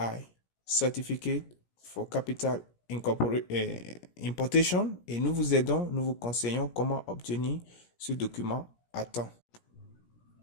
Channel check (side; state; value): right; late; 17 ms